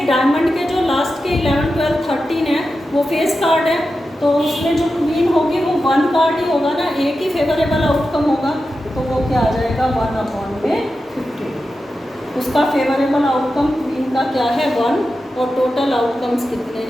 डायमंड के जो लास्ट के 11 12 13 है वो फेस कार्ड है, तो उसमें जो क्वीन होगी वो 1 कार्ड ही होगा ना, एक ही फेवरेबल आउटकम होगा, तो वो क्या आ जाएगा? 1/50। उसका फेवरेबल आउटकम क्वीन का क्या है? 1, और टोटल आउटकम्स कितने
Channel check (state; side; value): normal; both; correlation 0.91